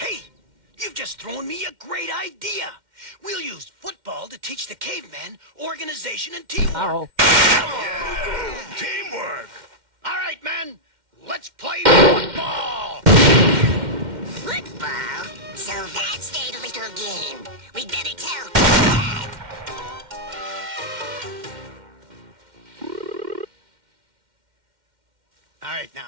you've just thrown me a great idea. We'll use football to teach the cavemen organization and teamwork. Yeah. Teamwork! All right, men, let's play football! Football? So that's their little game. We'd better tell Dad. All right,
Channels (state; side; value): late; left; 2.1 ms